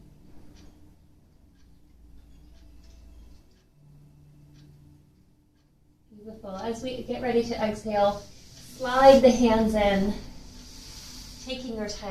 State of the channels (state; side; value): identical; both; correlation 1.00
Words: Beautiful. As we get ready to exhale, slide the hands in, taking your